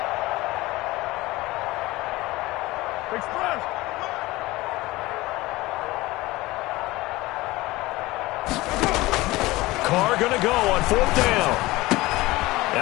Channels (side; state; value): right; quieter; 19.7 dB